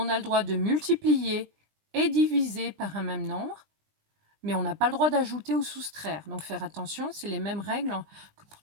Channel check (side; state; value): left; late; 20 ms